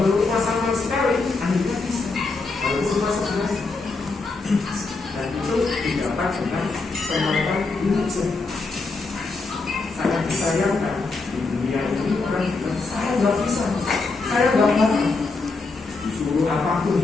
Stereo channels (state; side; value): quieter; right; 3.8 dB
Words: rumah sama sekali, akhirnya bisa. Walaupun rumah sebenarnya, dan itu didapat dengan kemampuan belajar. Sangat disayangkan di dunia ini orang bilang saya nggak bisa, saya nggak mau. Disuruh apapun